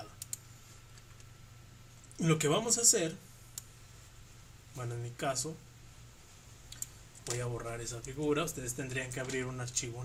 Lo que vamos a hacer, bueno, en mi caso voy a borrar esa figura. Ustedes tendrían que abrir un archivo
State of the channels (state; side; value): identical; both; correlation 1.00